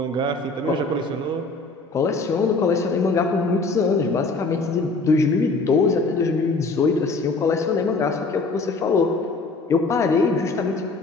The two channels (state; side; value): quieter; right; 3.6 dB